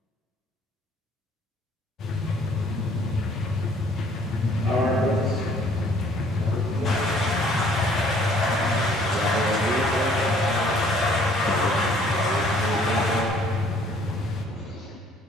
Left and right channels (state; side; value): normal; both; correlation 0.59